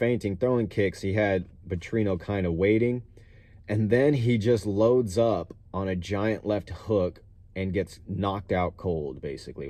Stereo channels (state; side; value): identical; both; correlation 1.00